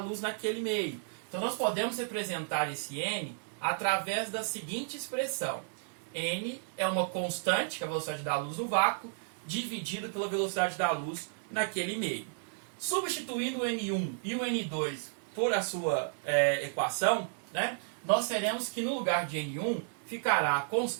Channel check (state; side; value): silent; left; digital silence